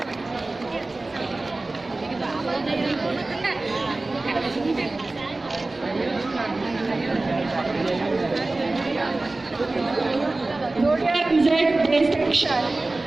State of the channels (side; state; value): left; quieter; 3.1 dB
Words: Gloria Ramzan, best section.